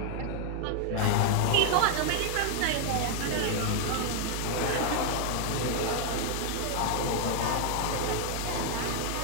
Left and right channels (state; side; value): different; both; correlation 0.00